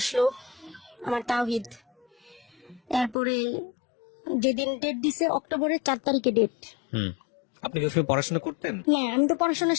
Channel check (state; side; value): drops out; right; at 3.2 s